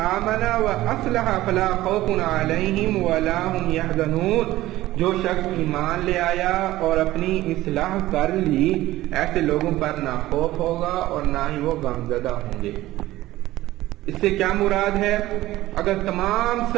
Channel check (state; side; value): quieter; left; 16.2 dB